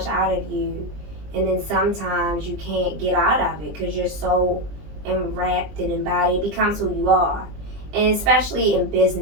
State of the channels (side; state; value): left; late; 20 ms